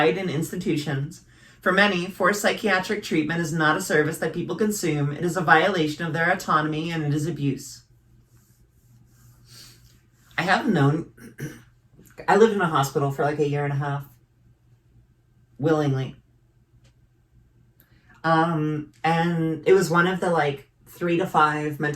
in institutions. For many, forced psychiatric treatment is not a service that people consume. It is a violation of their autonomy, and it is abuse. I have known... I lived in a hospital for like a year and a half. Willingly. And it was one of the like 3 to 5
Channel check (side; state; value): both; identical; correlation 1.00